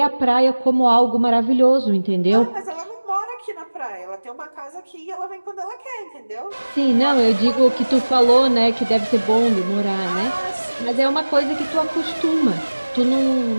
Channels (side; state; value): both; inverted; correlation -1.00